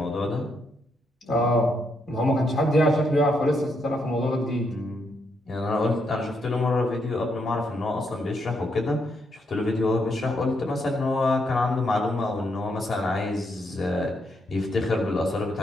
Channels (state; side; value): normal; both; correlation 0.78